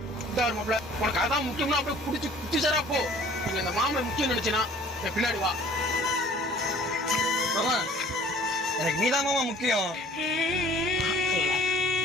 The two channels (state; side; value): normal; both; correlation 0.52